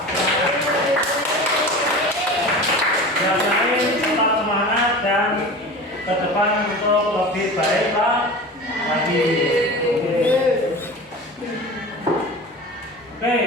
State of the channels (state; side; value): normal; both; correlation 0.34